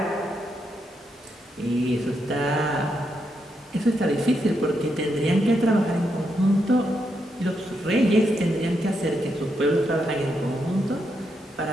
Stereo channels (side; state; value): both; normal; correlation 0.81